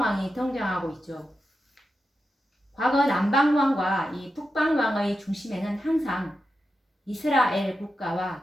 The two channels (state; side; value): normal; both; correlation 0.89